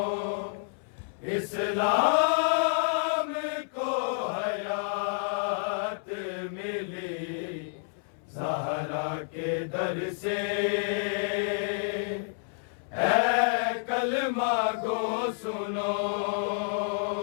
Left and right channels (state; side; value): silent; right; 58 dB below the other